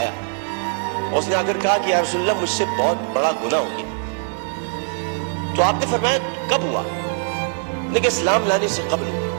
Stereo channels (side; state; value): left; silent; digital silence